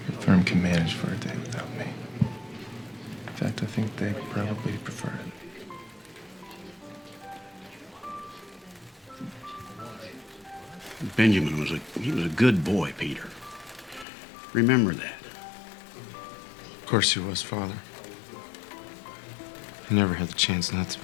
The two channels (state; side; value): drops out; right; at 14.1 s